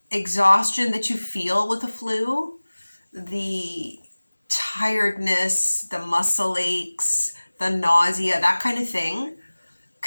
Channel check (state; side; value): inverted; both; correlation -1.00